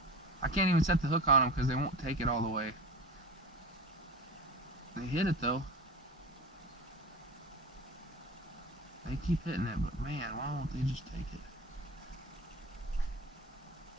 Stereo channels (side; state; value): both; normal; correlation 0.32